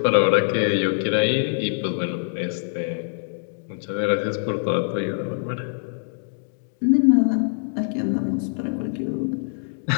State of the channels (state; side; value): silent; right; digital silence